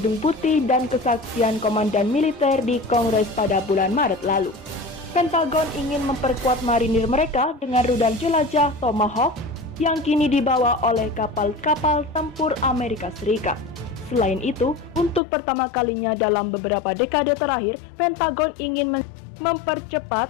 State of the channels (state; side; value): drops out; right; at 15.2 s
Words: Putih dan kesaksian komandan militer di Kongres pada bulan Maret lalu. Pentagon ingin memperkuat marinir mereka dengan rudal jelajah Tomahawk yang kini dibawa oleh kapal-kapal tempur Amerika Serikat. Selain itu, untuk pertama kalinya dalam beberapa dekade terakhir, Pentagon ingin mempercepat